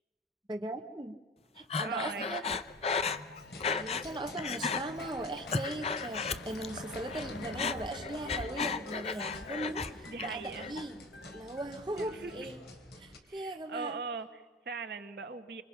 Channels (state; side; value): normal; both; correlation 0.34